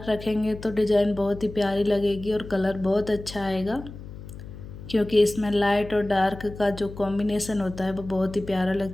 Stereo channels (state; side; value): noise; left; hum, 14 dB below the sound